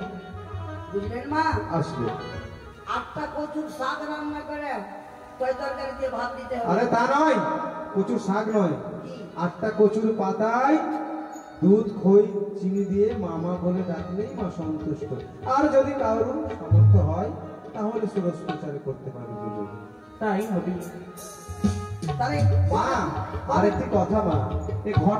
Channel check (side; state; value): both; identical; correlation 1.00